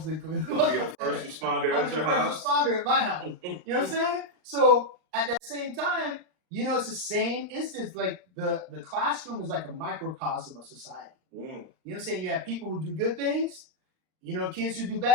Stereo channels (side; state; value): left; late; 39 ms